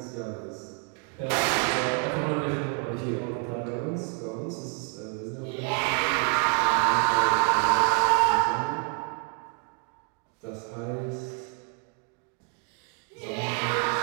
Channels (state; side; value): quieter; left; 36.3 dB